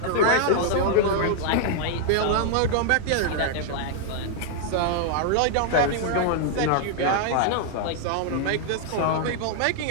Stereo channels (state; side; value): different; both; correlation -0.01